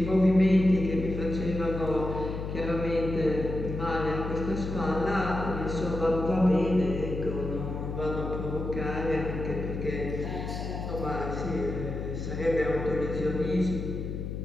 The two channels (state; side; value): noise; left; hum, 5 dB below the sound